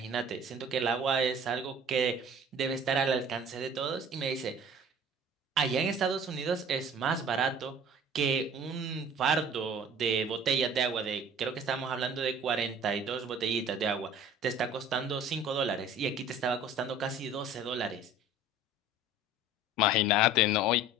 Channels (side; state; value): both; normal; correlation 0.47